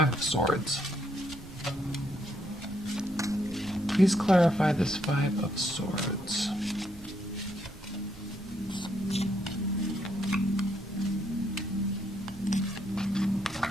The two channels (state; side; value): noise; right; rumble, 18 dB below the sound